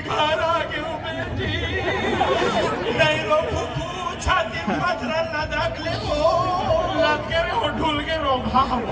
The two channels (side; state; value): both; identical; correlation 1.00